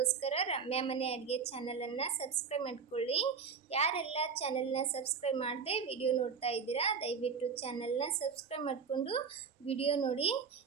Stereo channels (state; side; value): quieter; left; 5.9 dB